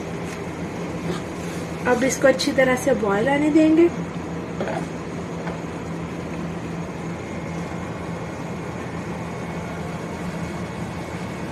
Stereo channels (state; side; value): identical; both; correlation 1.00